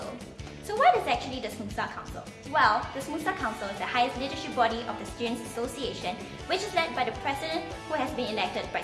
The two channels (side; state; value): both; identical; correlation 1.00